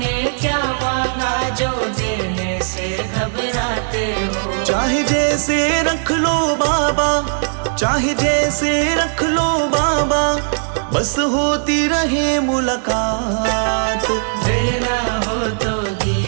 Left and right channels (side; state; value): left; silent; digital silence